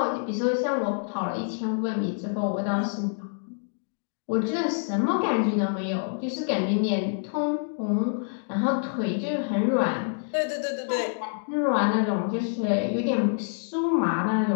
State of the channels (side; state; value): right; silent; digital silence